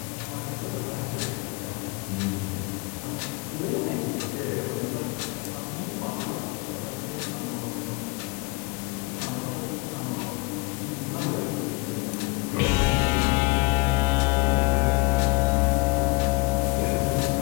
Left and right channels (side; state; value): right; quieter; 26.9 dB